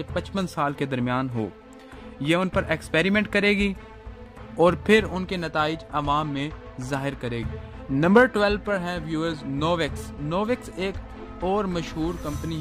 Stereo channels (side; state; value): both; identical; correlation 1.00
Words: 55 साल के दरमियान हो। यह उन पर एक्सपेरिमेंट करेगी और फिर उनके नताइज अवाम में जाहिर करेगी। नंबर 12 पर है व्यूअर्स नोवेक्स। नोवेक्स एक और मशहूर